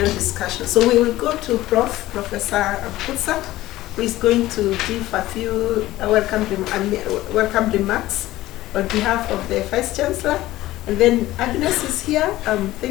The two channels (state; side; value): quieter; right; 16.3 dB